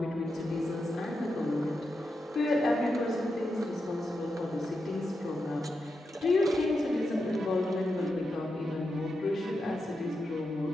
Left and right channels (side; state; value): both; normal; correlation 0.87